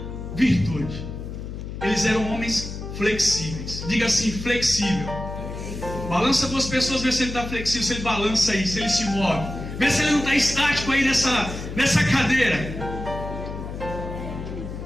virtude. Eles eram homens flexíveis. Diga assim, flexível. Balança duas pessoas, vê se ele está flexível, se ele balança aí, se ele se move. Vê se ele não está estático aí nessa cadeira.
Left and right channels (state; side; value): noise; left; hum, 8 dB below the sound